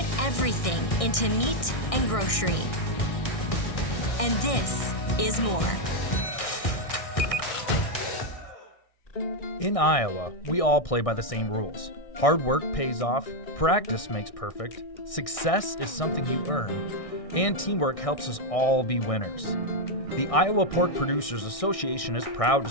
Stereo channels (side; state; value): right; late; 1.6 ms